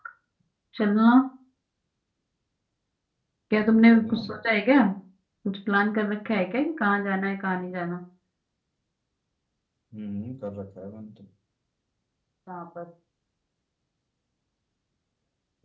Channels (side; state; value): both; identical; correlation 1.00